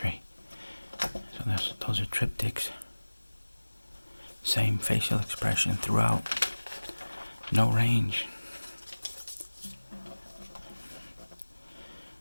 So those are triptychs. Same facial expression throughout. No range.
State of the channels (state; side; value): inverted; both; correlation -1.00